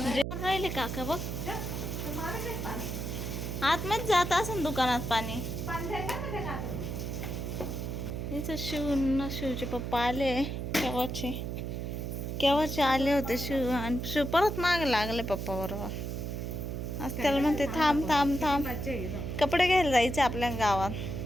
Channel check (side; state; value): right; noise; hum, 4 dB below the sound